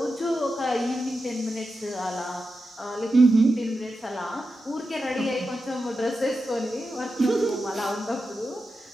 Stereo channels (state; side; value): normal; both; correlation 0.90